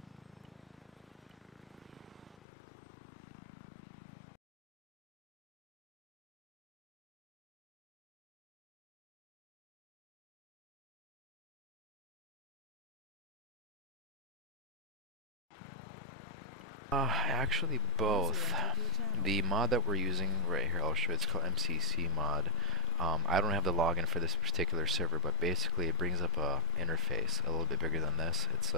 Actually both. The mod that we're using right here, I'll show you, it's called MCC mod. I don't have the login for this particular server, but basically it brings up a interface a little bit bigger than this. It's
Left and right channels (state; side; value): normal; both; correlation -0.03